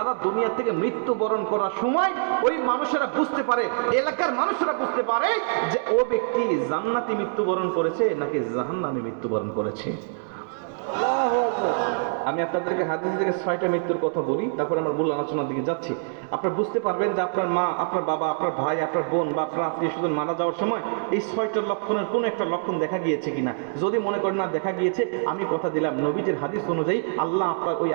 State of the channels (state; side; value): silent; left; 62 dB below the other